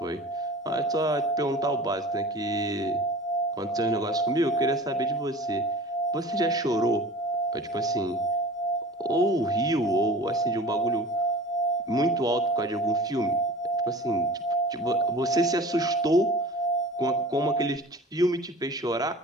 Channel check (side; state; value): both; normal; correlation 0.40